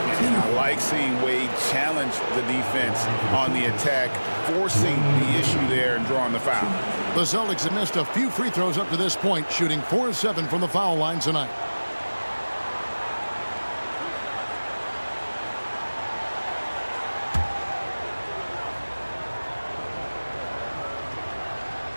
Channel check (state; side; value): inverted; both; correlation -1.00